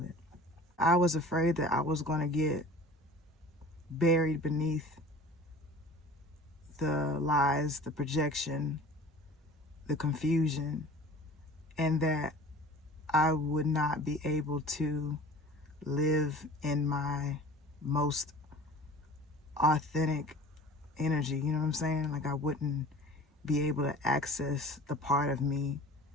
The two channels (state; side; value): normal; both; correlation 0.43